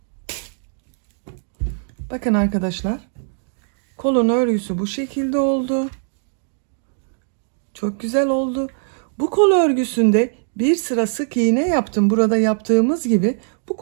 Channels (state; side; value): silent; left; 65 dB below the other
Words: Bakın arkadaşlar. Kolun örgüsü bu şekilde oldu. Çok güzel oldu. Bu kol örgüsünde bir sıra sık iğne yaptım. Burada yaptığımız gibi bu